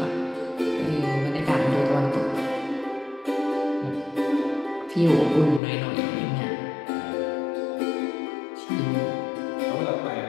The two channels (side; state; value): right; drops out; at 5.6 s